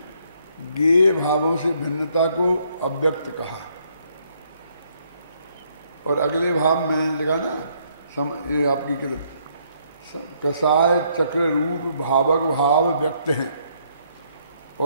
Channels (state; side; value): inverted; both; correlation -0.70